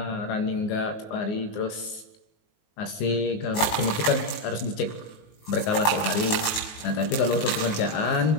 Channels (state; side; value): late; right; 19 ms